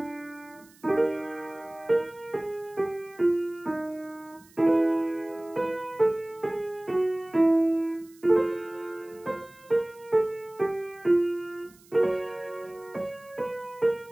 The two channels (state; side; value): noise; right; hiss, 27 dB below the sound